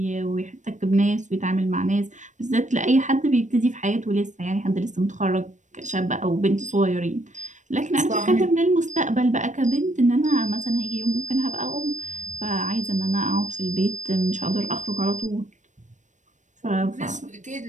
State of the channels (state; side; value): late; left; 0.35 ms